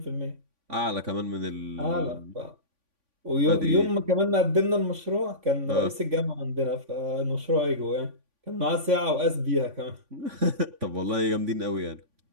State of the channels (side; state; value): left; late; 3.5 ms